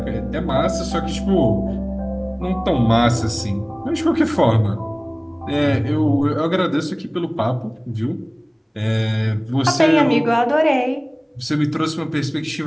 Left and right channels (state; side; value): identical; both; correlation 1.00